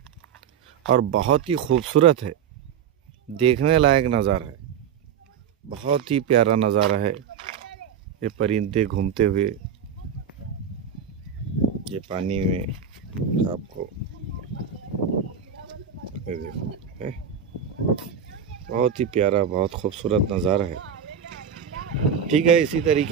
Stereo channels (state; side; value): quieter; left; 7.6 dB